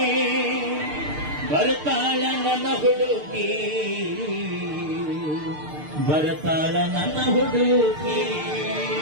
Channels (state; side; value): late; left; 6.6 ms